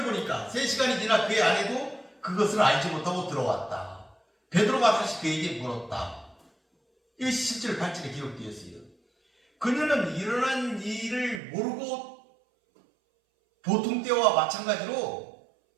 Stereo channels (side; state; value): left; drops out; at 11.4 s